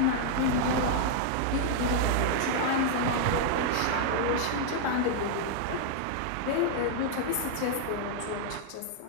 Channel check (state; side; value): different; both; correlation -0.01